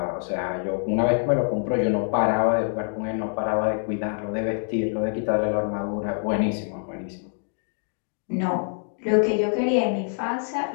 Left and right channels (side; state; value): right; silent; digital silence